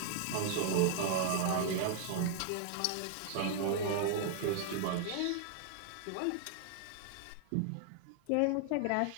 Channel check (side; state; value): both; different; correlation 0.00